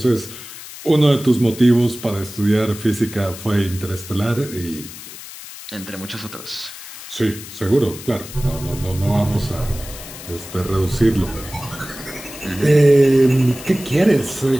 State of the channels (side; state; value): left; noise; hiss, 14 dB below the sound